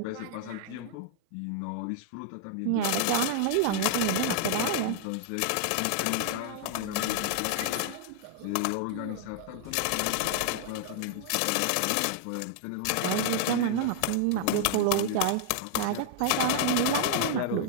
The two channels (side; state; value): both; different; correlation 0.00